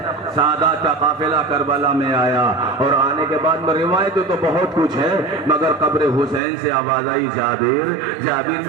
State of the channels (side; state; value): left; drops out; at 6.4 s